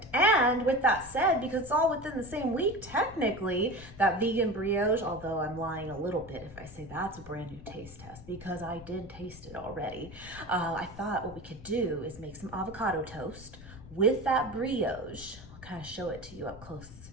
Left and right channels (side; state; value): left; noise; rumble, 17 dB below the sound